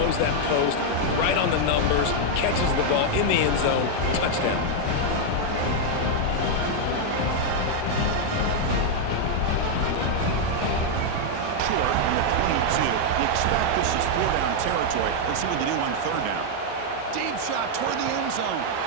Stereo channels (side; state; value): both; different; correlation 0.00